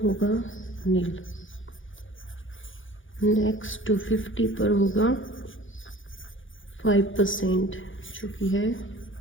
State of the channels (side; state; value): right; late; 0.57 ms